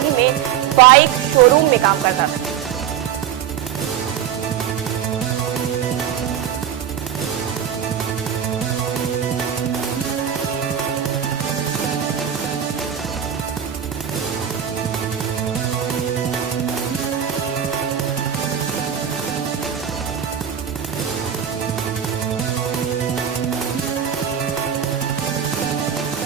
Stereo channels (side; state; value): left; quieter; 9.4 dB